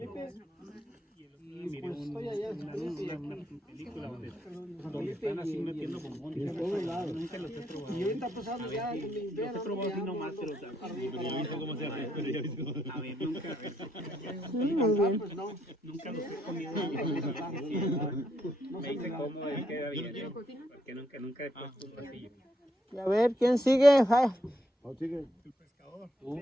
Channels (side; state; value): both; normal; correlation 0.75